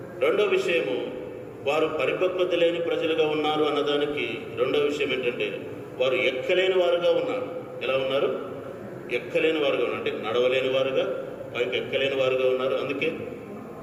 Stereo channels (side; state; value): both; identical; correlation 1.00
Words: రెండో విషయము, వారు పరిపక్వత లేని ప్రజలుగా ఉన్నారు అన్నదానికి రెండో విషయం ఏంటంటే, వారు ఎక్కలేని వారుగా ఉన్నారు. ఎలా ఉన్నారు? ఎక్కలేని వారుగా ఉన్నారు, అంటే నడవలేని వారుగా, పైకి ఎక్కలేని వారుగా ఉన్నారు. అందుకే